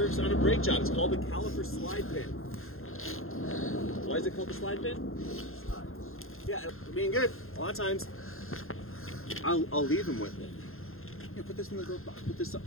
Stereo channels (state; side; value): late; right; 0.61 ms